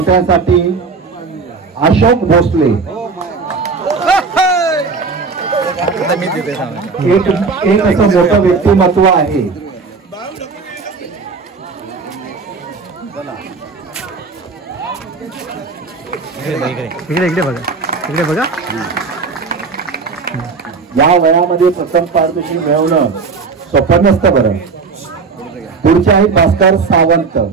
अशोक भोसले. एक असं मोठं व्यक्तिमत्व आहे. इकडे बघा. या वयामध्ये प्रथम पारितोषिक मिळवणं सोपं नसतं बरं. पुढचे आहेत भास्कर सावंत.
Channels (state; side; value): quieter; left; 4.7 dB